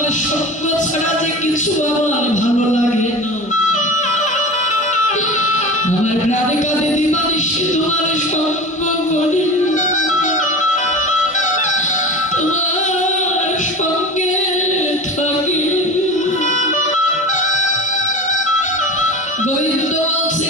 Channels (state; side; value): normal; both; correlation 0.31